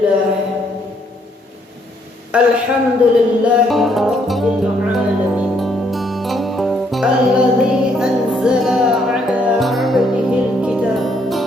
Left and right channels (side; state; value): both; normal; correlation 0.70